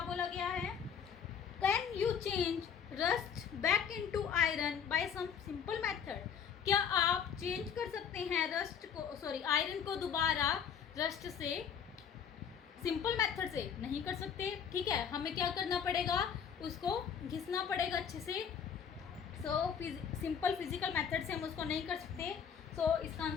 बोला गया है। Can you change rust back into iron by some simple method. क्या आप चेंज कर सकते हैं रस्ट को, सॉरी आयरन को दोबारा रस्ट से सिंपल मेथड से? नहीं कर सकते। ठीक है, हमें क्या करना पड़ेगा, उसको घिसना पड़ेगा अच्छे से। सो सिंपल फिजिकल मेथड से हम उसको नहीं कर सकते। सो इसका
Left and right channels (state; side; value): quieter; right; 7.5 dB